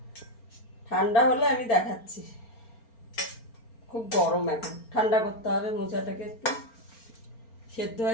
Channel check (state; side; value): late; right; 4.4 ms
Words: ঠান্ডা হলে আমি দেখাচ্ছি। খুব গরম, এখন ঠান্ডা করতে হবে মোচাটাকে। একটু সেদ্ধ